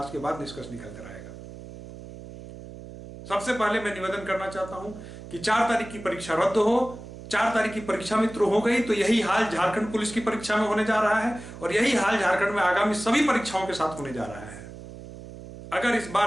के बाद निष्कर्ष निकल कर आएगा। सबसे पहले मैं निवेदन करना चाहता हूं कि 4 तारीख की परीक्षा रद्द हो। 4 तारीख की परीक्षा मित्र हो गई तो यही हाल झारखंड पुलिस की परीक्षा में होने जा रहा है, और यही हाल झारखंड में आगामी सभी परीक्षाओं के साथ होने जा रहा है। अगर इस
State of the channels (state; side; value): noise; right; hum, 14 dB below the sound